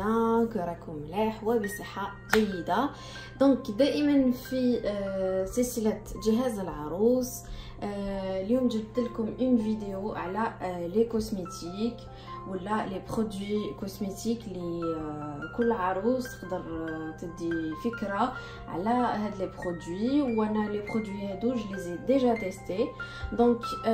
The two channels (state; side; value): identical; both; correlation 1.00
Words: que راكم ملاح وبصحة جيدة. دونك دائما في سلسلة جهاز العروس. اليوم جبت لكم اون فيديو على لي كوسميتيك ولا لي برودوي كوسميتيك اللي كل عروس تقدر تدي فكره على هاد لي برودوي. وانا لي برودوي هادو جو لي ديجا تيستي، دونك